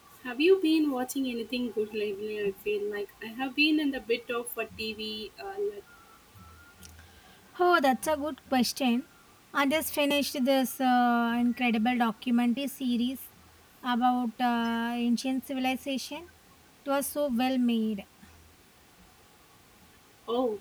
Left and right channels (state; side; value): identical; both; correlation 1.00